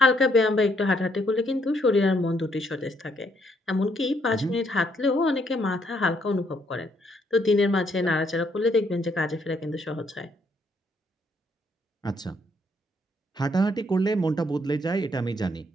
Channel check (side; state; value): both; normal; correlation 0.71